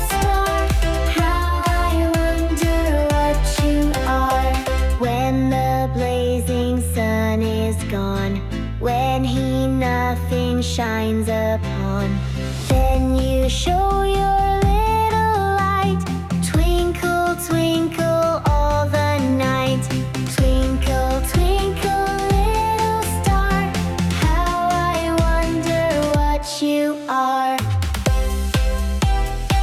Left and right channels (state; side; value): identical; both; correlation 1.00